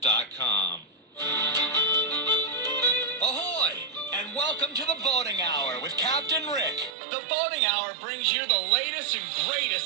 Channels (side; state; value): left; drops out; at 7.0 s